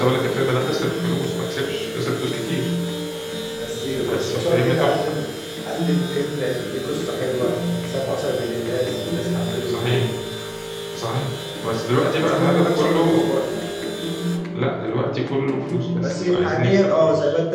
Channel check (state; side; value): identical; both; correlation 1.00